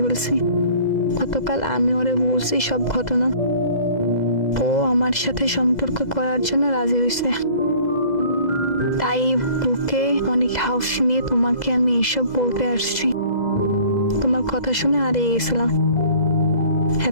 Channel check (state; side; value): late; right; 2.0 ms